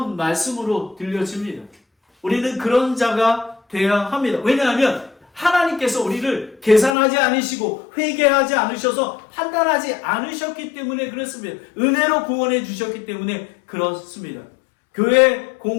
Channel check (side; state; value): right; drops out; at 6.9 s